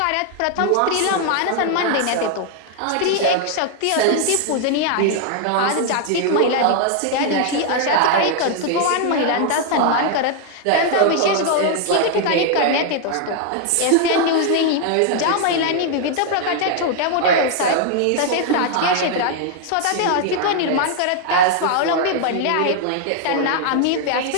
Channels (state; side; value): different; both; correlation 0.00